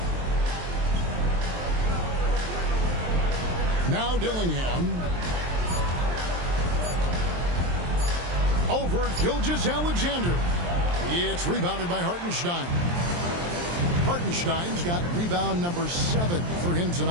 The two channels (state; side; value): late; left; 23 ms